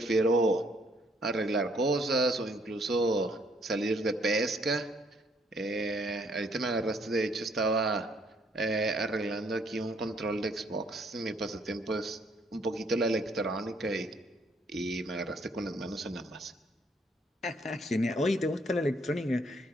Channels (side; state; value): both; normal; correlation 0.67